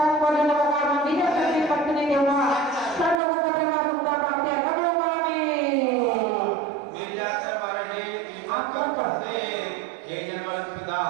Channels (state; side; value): drops out; left; at 3.2 s